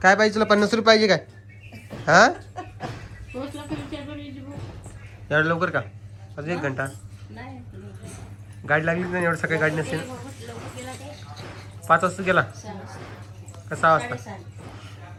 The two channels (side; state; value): both; identical; correlation 1.00